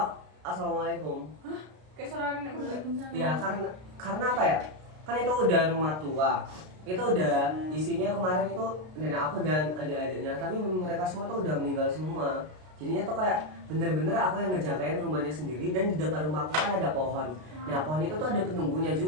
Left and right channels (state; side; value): late; left; 33 ms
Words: Assalamualaikum. Kayak suara nenek Waalaikumsalam. Ya karena apa ya? Kan itu udah rumah tua. Itu udah isinya kemarin itu nenek aku dan adik-adiknya. Tapi mereka semua tuh udah meninggal semua. Jadinya tuh kayak bener-bener aku yang ngejagain rumahnya sendiri. Dan di depan rumahku kan ada pohon. Nah pohon itu tuh ada penunggunya